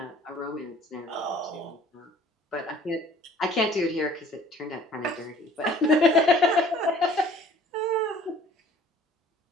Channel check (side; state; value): both; normal; correlation 0.53